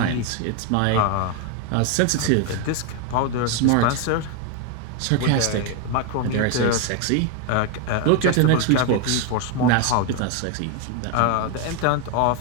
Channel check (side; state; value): both; different; correlation 0.01